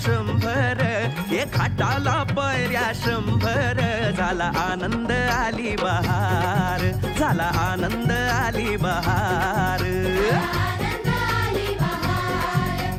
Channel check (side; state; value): both; identical; correlation 1.00